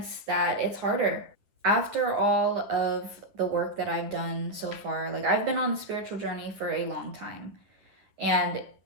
that it's harder. After all of the work that I've done so far, like I've been on the spiritual journey for a long time, and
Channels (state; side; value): late; left; 9.7 ms